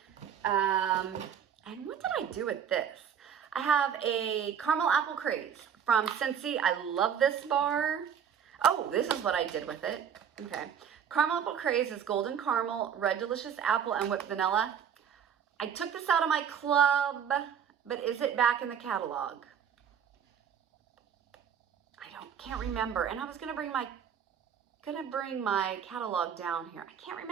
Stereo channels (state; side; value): quieter; left; 8.2 dB